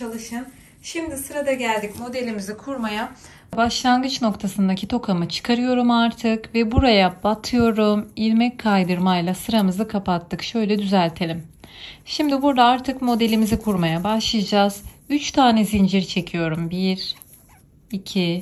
Şimdi sırada geldik modelimizi kurmaya. Başlangıç noktasındaki tokamı çıkarıyorum artık ve buraya batıyorum. İlmek kaydırmayla sıramızı kapattık. Şöyle düzeltelim. Şimdi burada artık modelimizi kurmaya başlayacağız. 3 tane zincir çekiyorum. 1,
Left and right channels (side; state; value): both; identical; correlation 1.00